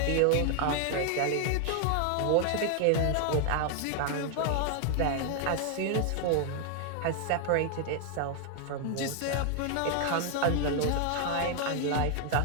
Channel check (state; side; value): different; both; correlation 0.00